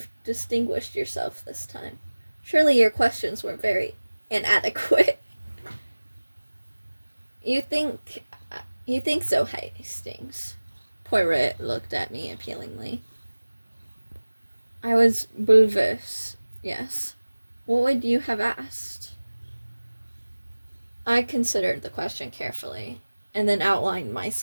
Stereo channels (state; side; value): inverted; both; correlation -1.00